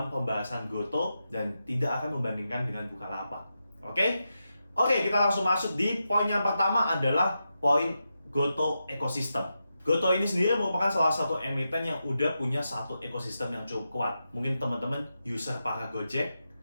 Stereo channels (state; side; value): inverted; both; correlation -0.88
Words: pembahasan Gotoh dan tidak akan membandingkan dengan Bukalapak. Oke, kita langsung masuk di poin yang pertama adalah poin Gotoh ekosistem. Gotoh ini sendiri merupakan salah satu emiten yang udah punya satu ekosistem yang cukup kuat. Mungkin teman-teman user para Gojek,